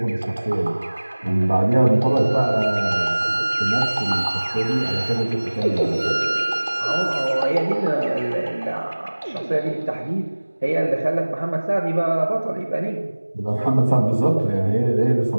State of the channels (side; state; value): both; inverted; correlation -1.00